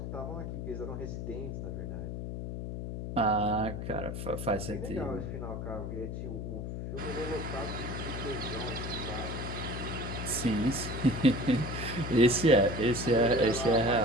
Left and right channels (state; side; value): noise; left; hum, 5 dB below the sound